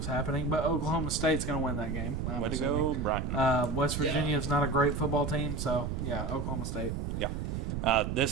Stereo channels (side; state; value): right; noise; rumble, 3 dB below the sound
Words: happening. But Oklahoma State's going to win that game. I'm Way to assuming. go, Brian. West Virginia is not a great football team, so yeah, Oklahoma State.